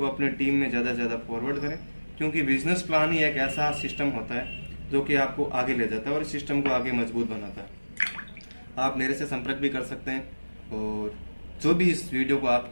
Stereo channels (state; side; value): inverted; both; correlation -1.00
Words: अपने टीम में ज़्यादा से ज़्यादा फॉरवर्ड करें, क्योंकि बिजनेस प्लान ही एक ऐसा सिस्टम होता है जो कि आपको आगे ले जाता है और इस सिस्टम को आगे मजबूत बनाता है। आप मेरे से संपर्क भी कर सकते हैं, और जो भी इस वीडियो को